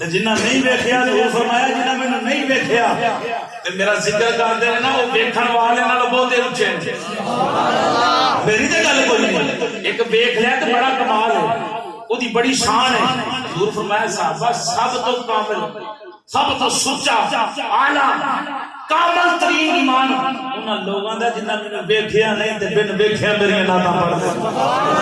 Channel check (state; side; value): identical; both; correlation 1.00